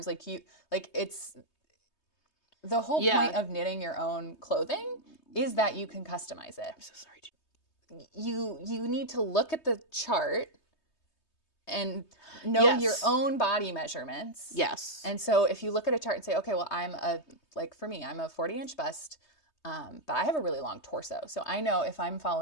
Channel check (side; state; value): right; late; 3.2 ms